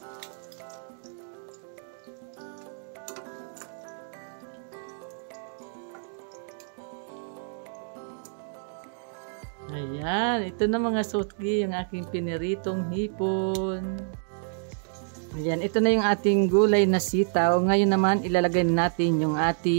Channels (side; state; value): left; silent; digital silence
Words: Ayan, ito na mga suki, yung aking piniritong hipon. Ayan, ito na yung ating gulay na sitaw. Ngayon naman, ilalagay natin yung